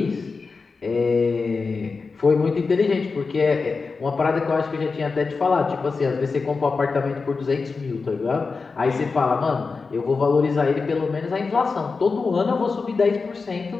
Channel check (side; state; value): right; quieter; 4.5 dB